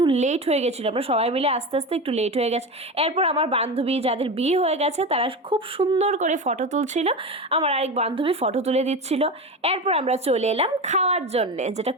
লেট হয়ে গেছিলো, আমরা সবাই মিলে আস্তে আস্তে একটু লেট হয়ে গেছে। এরপর আমার বান্ধবী যাদের বিয়ে হয়ে গেছে তারা খুব সুন্দর করে ফটো তুলছিল, আমার আরেক বান্ধবী ফটো তুলে দিচ্ছিল। এরপর আমরা চলে এলাম খাওয়ার জন্যে, যেটা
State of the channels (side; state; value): both; normal; correlation 0.23